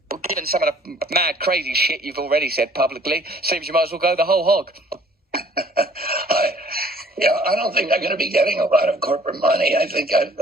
Well, given some of the mad, crazy shit you've already said publicly, seems you might as well go the whole hog. I don't think I'm going to be getting a lot of corporate money. I think I've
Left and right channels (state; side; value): normal; both; correlation 0.56